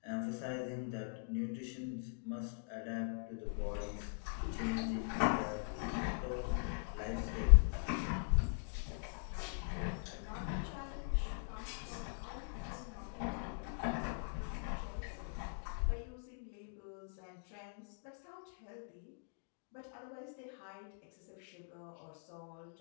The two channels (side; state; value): right; silent; digital silence